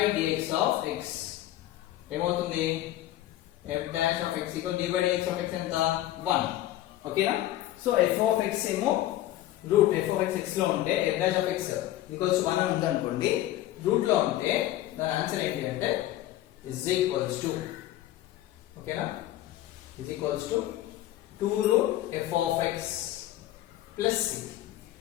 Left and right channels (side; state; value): right; quieter; 14.3 dB